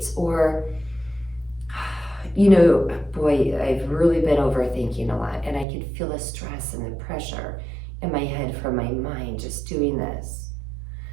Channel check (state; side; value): drops out; left; at 5.7 s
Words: Or, boy, I've really been overthinking a lot, and I could feel the stress and the pressure in my head from my mind just doing this.